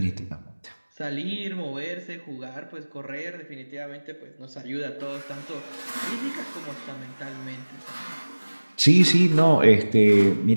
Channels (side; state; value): both; inverted; correlation -1.00